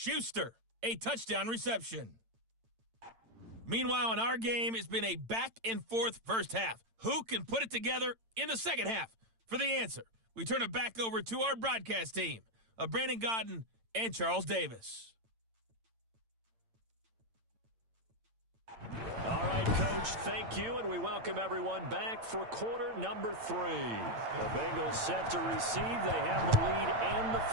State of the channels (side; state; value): left; late; 8.9 ms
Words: a touchdown reception. Meanwhile, in our game, it's been a back-and-forth first half. Who can put it together in the second half? For the answer, we turn it back over to our broadcast team of Brandon Godden and Charles Davis. All right, Coach, thank you, and we welcome everyone back for quarter number 3. The Bengals set to receive. They have the lead and the